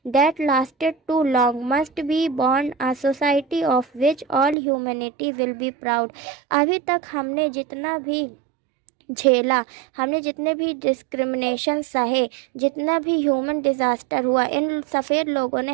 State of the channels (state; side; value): drops out; left; at 4.5 s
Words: that lasted too long must be born a society of which all humanity will be proud. अभी तक हमने जितना भी झेला, हमने जितने भी डिस्क्रिमिनेशन सहे, जितना भी ह्यूमन डिज़ास्टर हुआ, इन सफ़ेद लोगों ने